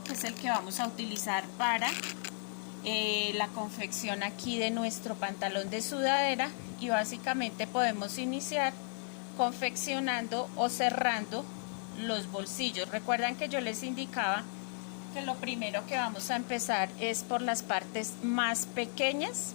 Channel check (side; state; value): right; silent; 55 dB below the other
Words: que es el que vamos a utilizar para la confección aquí de nuestro pantalón de sudadera. Y básicamente podemos iniciar confeccionando o cerrando los bolsillos. Recuerdan que yo les indicaba que lo primero que vamos a empezar es por las partes más pequeñas.